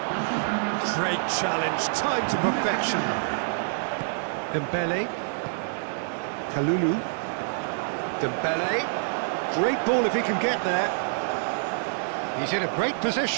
Great challenge, time to perfection. Dembele. Kalulu. Dembele. Great ball if he can get there. He's in a great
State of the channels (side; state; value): left; silent; digital silence